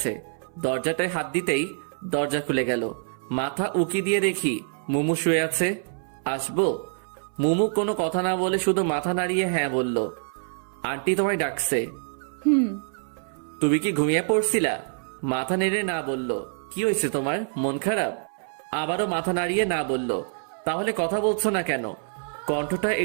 দরজাটায় হাত দিতেই দরজা খুলে গেল। মাথা উকি দিয়ে দেখি মুমু শুয়ে আছে। আসবো? মুমু কোনো কথা না বলে শুধু মাথা নাড়িয়ে হ্যাঁ বলল। আন্টি তোমায় ডাকছে। হুম। তুমি কি ঘুমিয়ে পড়ছিলা? মাথা নেড়ে না বলল। কি হয়েছে তোমার, মন খারাপ? আবারও মাথা নাড়িয়ে না বলল। তাহলে কথা বলছো না কেন? কণ্ঠটা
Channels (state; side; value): silent; left; 61 dB below the other